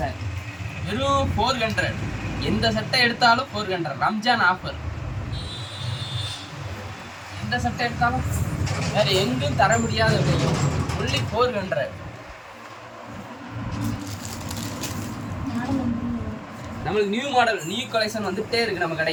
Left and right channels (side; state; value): both; identical; correlation 1.00